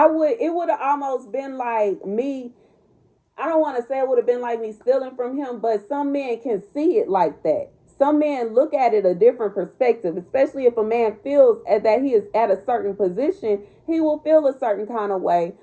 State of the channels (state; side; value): identical; both; correlation 1.00